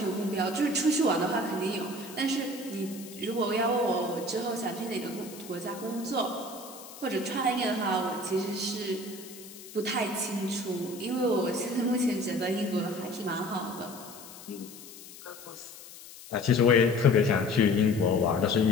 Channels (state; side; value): noise; left; hiss, 17 dB below the sound